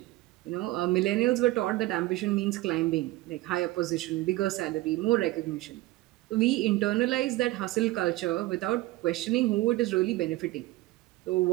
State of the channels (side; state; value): left; quieter; 18.3 dB